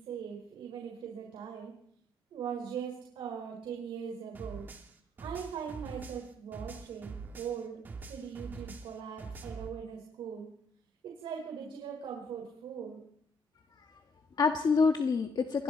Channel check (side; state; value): both; normal; correlation 0.67